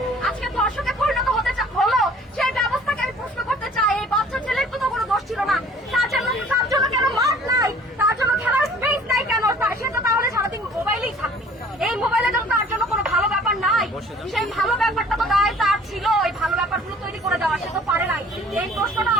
আজকে ধর্ষকে পরিণত হলো, সেই ব্যবস্থাকে আমি প্রশ্ন করতে চাই। এই বাচ্চা ছেলের তো কোনো দোষ ছিল না, তার জন্য কেন মাঠ নাই, তার জন্য খেলার স্পেস নাই কেন? সে তো তাহলে সারাদিন মোবাইলেই থাকবে। এই মোবাইলে তো তার জন্য কোনো ভালো ব্যাপার নাই। সেই ভালো ব্যাপারটা তো দায় তার ছিল, এই ভালো ব্যাপারগুলো তৈরি করে দেওয়া, সে তো পারে নাই। এই প্রশ্নটা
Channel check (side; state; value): both; normal; correlation 0.52